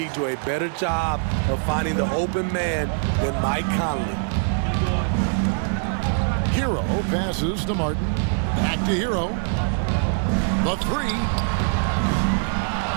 do a better job of finding the open man than Mike Conley. Hero passes to Martin. Back to Hero. The 3.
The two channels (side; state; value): left; silent; 63 dB below the other